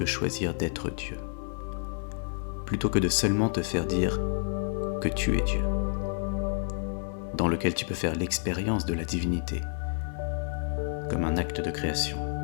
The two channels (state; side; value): silent; right; 58 dB below the other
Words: choisir d'être Dieu, plutôt que de seulement te faire dire que tu es Dieu, dans lequel tu peux faire l'expérience de la divinité, comme un acte de création,